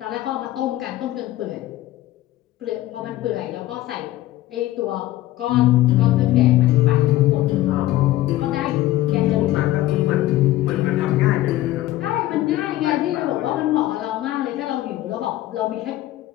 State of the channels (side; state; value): right; quieter; 15.6 dB